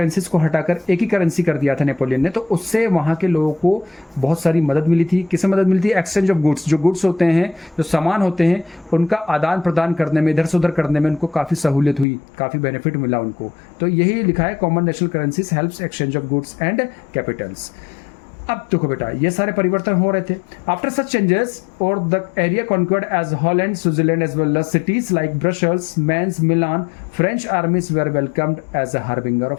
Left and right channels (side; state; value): right; drops out; at 12.1 s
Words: को हटाकर एक ही करेंसी कर दिया था नेपोलियन ने, तो उससे वहाँ के लोगों को बहुत सारी मदद मिली थी। किससे मदद मिली थी? Exchange of goods. जो गुड्स होते हैं, जो सामान होते हैं, उनका आदान प्रदान करने में, इधर से उधर करने में उनको काफ़ी सहूलियत हुई, काफ़ी बेनिफिट मिला उनको। तो यही लिखा है, common national currencies helps exchange of goods and capitals. अब देखो बेटा, ये सारे परिवर्तन हो रहे थे। आफ्टर सच चेंजेस और the area conquered as Holland, Switzerland as well as cities like Brussels, Mainz, Milan, French armies were welcomed as a harbinger